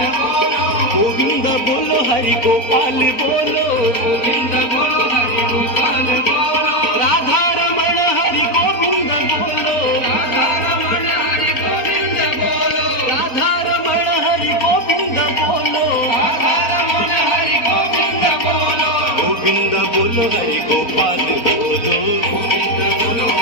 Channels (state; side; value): late; right; 4.3 ms